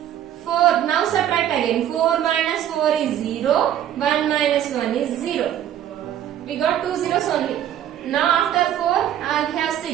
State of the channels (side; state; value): left; quieter; 10.8 dB